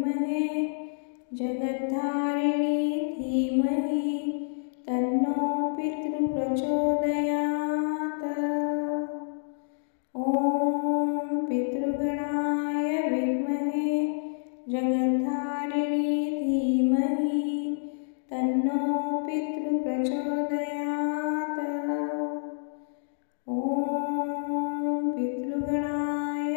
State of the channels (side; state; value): right; silent; digital silence